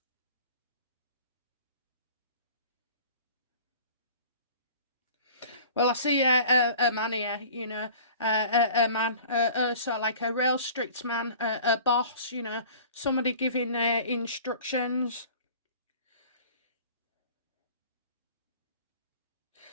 Well, I see a man here, a man, sort of like a real strict man, a boss, somebody giving instructions.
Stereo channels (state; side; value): inverted; both; correlation -0.45